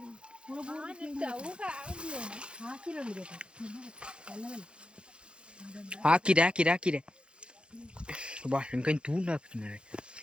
ಹಾಕಿದೆ ಬಾ ನನ್ಕೈ ತೂಂಡು ಹಾಕ್ತೀನಿ.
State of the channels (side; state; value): left; late; 0.055 ms